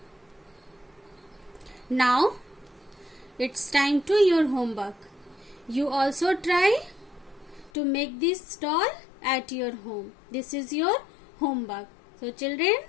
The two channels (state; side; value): drops out; right; at 7.7 s